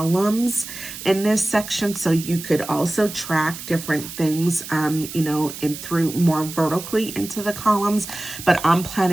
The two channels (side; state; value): right; noise; hiss, 11 dB below the sound